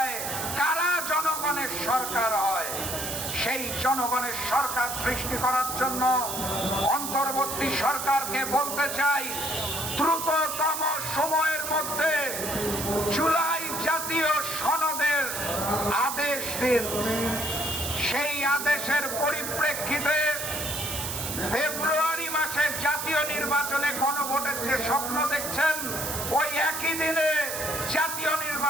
কারা জনগণের সরকার হয়। সেই জনগণের সরকার সৃষ্টি করার জন্য অন্তর্বর্তী সরকারকে বলতে চাই, দ্রুততম সময়ের মধ্যে জুলাই জাতীয় সনদের আদেশ দিন। সেই আদেশের পরিপ্রেক্ষিতে ফেব্রুয়ারি মাসে জাতীয় নির্বাচনে গণভোটের যে স্বপ্ন দেখছেন ওই একই দিনে জাতীয়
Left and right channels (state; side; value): noise; right; hiss, 4 dB below the sound